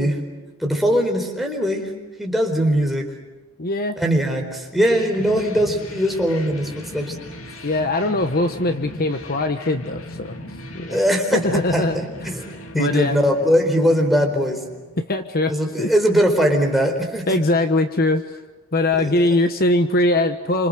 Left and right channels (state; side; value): normal; both; correlation 0.58